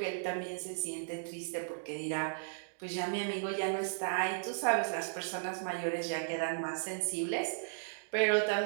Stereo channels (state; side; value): silent; left; digital silence